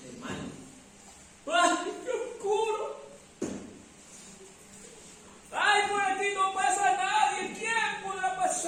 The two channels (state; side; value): identical; both; correlation 1.00